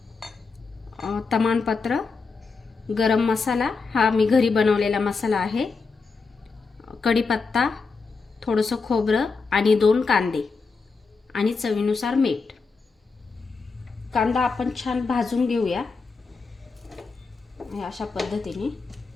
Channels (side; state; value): right; quieter; 4.5 dB